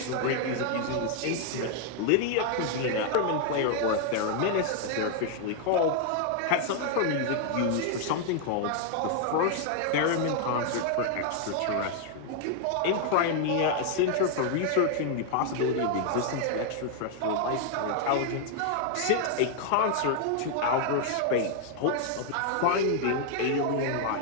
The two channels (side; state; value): both; different; correlation 0.00